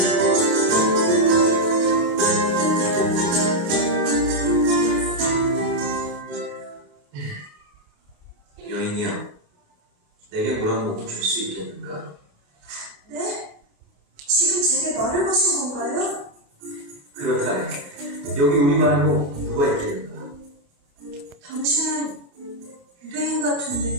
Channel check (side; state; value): left; late; 29 ms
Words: 여인이요, 내게 물 한 모금 줄 수 있겠는가? 네? 지금 제게 말을 거신 건가요? 그렇다네. 여기 우리 말고 누가 있겠는가? 당신은 유대인